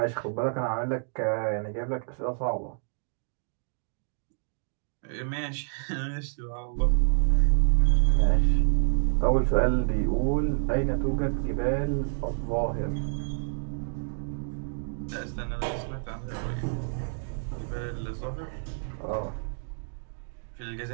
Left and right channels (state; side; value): silent; left; digital silence